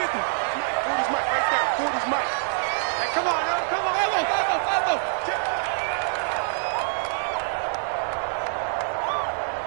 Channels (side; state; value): left; silent; digital silence